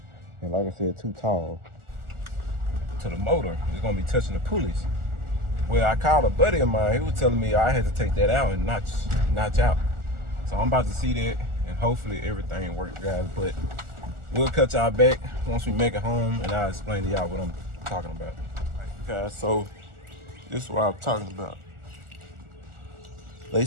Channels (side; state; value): left; late; 1.4 ms